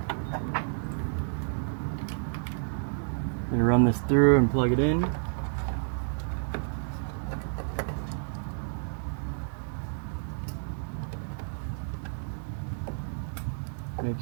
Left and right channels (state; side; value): silent; left; 58 dB below the other